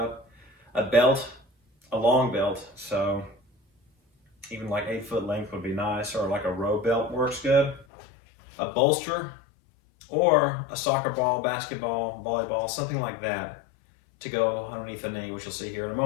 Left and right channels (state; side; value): drops out; right; at 7.9 s